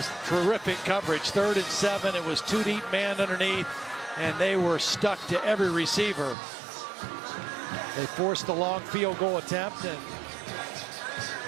terrific coverage. 3rd and 7. It was 2 deep man underneath, and they were stuck to every receiver. They forced the long field goal attempt, and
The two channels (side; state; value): left; drops out; at 6.4 s